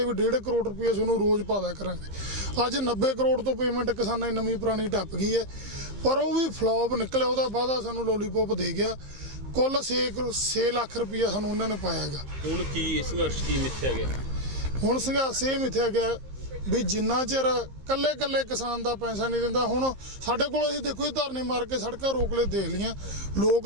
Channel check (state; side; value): late; left; 13 ms